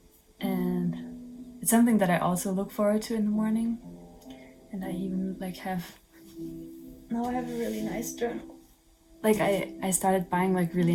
and it's something that I also look forward to in the morning. And I even now I have a really nice journal. Like, I started buying like really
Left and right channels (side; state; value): both; identical; correlation 1.00